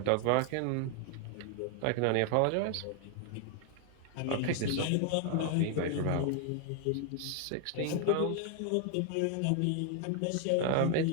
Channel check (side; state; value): both; different; correlation 0.00